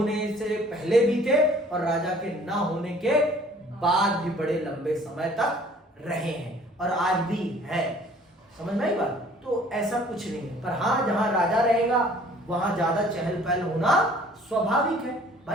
से पहले भी थे और राजा के न होने के बाद भी बड़े लंबे समय तक रहे हैं और आज भी है। समझ में आई बात? तो ऐसा कुछ नहीं है, पर हाँ जहां राजा रहेगा वहां ज्यादा चहल पहल होना स्वाभाविक है।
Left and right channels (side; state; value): both; normal; correlation 0.54